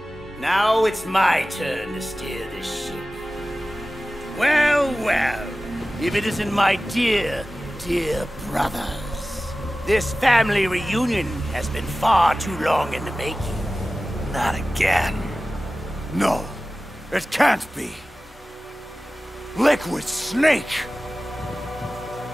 Now it's my turn to steer this ship. Well, well, if it isn't my dear, dear brothers. This family reunion has been far too long in the making. Not again. No, it can't be. Liquid Snake!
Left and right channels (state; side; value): normal; both; correlation 0.96